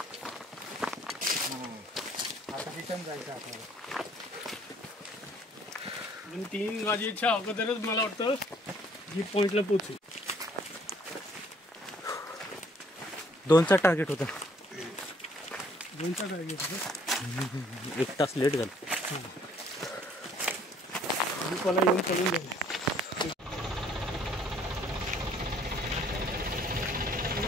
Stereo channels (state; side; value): normal; both; correlation 0.61